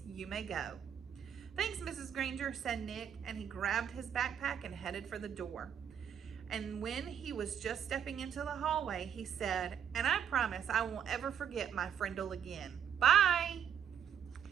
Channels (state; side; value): quieter; left; 8.6 dB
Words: You may go." "Thanks, Mrs. Granger," said Nick, and he grabbed his backpack and headed for the door. And when he was just stepping into the hallway, he said, "And I promise I won't ever forget my Frindle again. Bye."